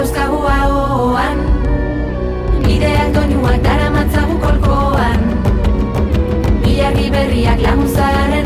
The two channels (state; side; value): identical; both; correlation 1.00